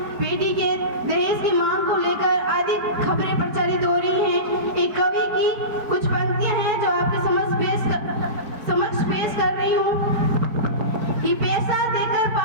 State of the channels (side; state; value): left; late; 4.6 ms